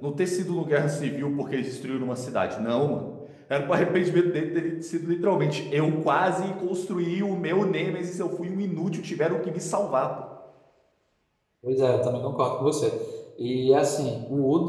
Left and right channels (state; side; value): identical; both; correlation 1.00